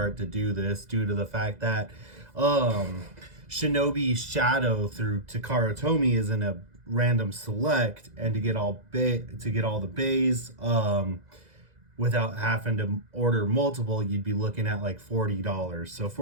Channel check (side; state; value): left; late; 2.0 ms